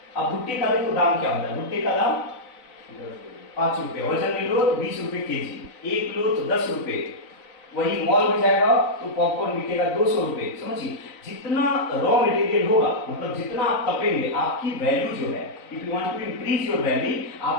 अब भुट्टे का देखो दाम क्या होता है। भुट्टे का दाम 5 रुपए, वजन में लो तो 20 रुपए केजी, एक लो तो 10 रुपए। वही मॉल में जाएगा तो पॉपकॉर्न बिकेगा 200 रुपए। समझिए, जितना रॉ मटेरियल होगा, मतलब जितना आप तपेंगे, आपकी वैल्यू जो है, if you want to increase your value,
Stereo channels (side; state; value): right; late; 3.9 ms